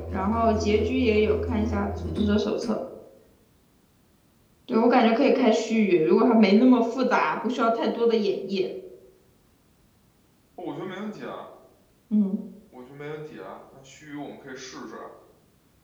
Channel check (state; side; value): identical; both; correlation 1.00